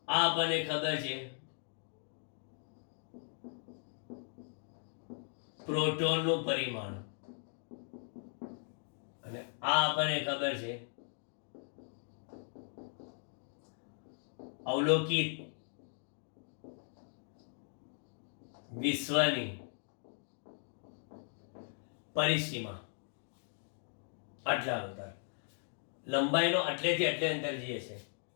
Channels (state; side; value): silent; right; 52 dB below the other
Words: આ આપણને ખબર છે પ્રોટોનનું પરિમાણ, અને આ આપણને ખબર છે અવલોકિત વિશ્વની પરિસીમા. આટલા અંતર લંબાઈનો આટલેથી આટલે અંતર જે છે,